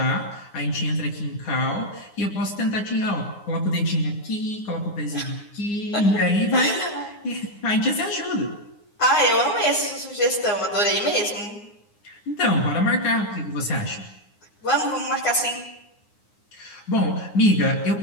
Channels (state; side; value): late; right; 9.7 ms